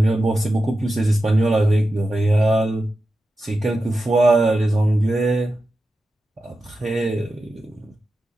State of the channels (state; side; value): normal; both; correlation 0.91